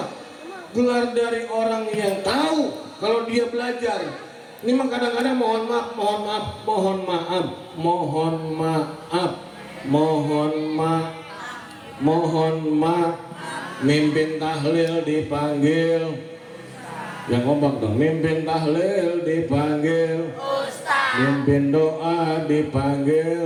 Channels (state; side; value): identical; both; correlation 1.00